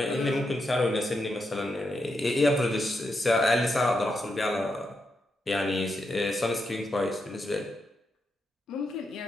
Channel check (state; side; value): normal; both; correlation 0.84